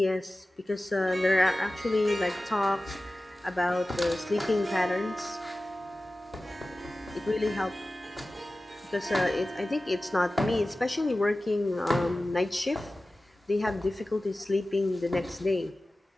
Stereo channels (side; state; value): both; normal; correlation 0.96